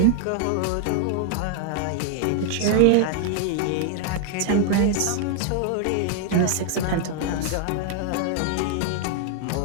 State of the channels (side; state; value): both; different; correlation 0.00